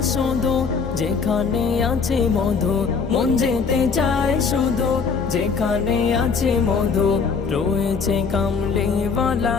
শুধু যেখানে আছে মধু, মন যেতে চায় শুধু যেখানে আছে মধু, রয়েছে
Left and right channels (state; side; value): quieter; right; 5.3 dB